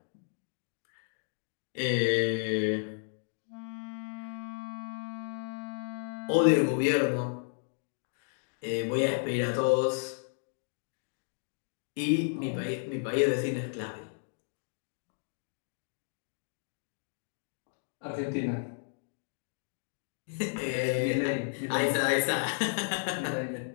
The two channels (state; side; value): silent; right; digital silence